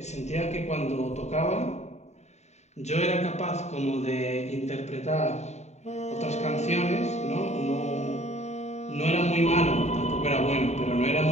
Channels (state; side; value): late; right; 0.32 ms